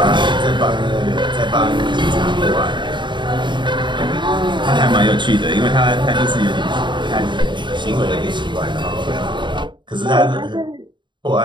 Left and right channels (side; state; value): left; late; 0.23 ms